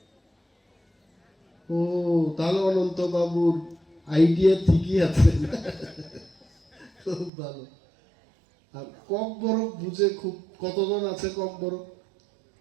ও, তাহলে অনন্তবাবুর আইডিয়া ঠিকই আছে, খুব ভালো। আর কক বরক বুঝে খুব, কতজন আছে কক বরক?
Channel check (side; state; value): left; drops out; at 7.3 s